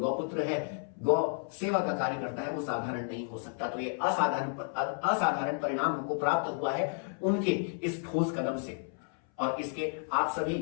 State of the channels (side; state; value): right; silent; 56 dB below the other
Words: है, गौ सेवा का कार्य करता है, वो साधारण नहीं हो सकता। तो ये असाधारण परिणाम हमको प्राप्त हुआ है उनके इस ठोस कदम से और इसके आप सभी